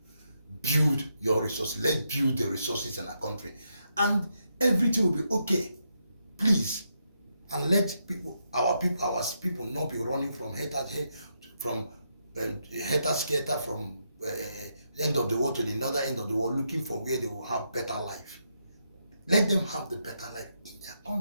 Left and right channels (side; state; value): both; inverted; correlation -0.81